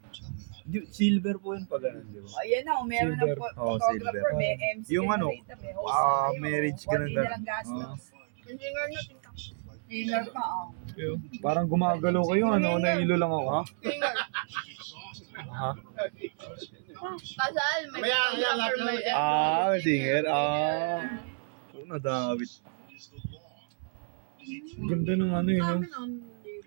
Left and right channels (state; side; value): silent; left; 58 dB below the other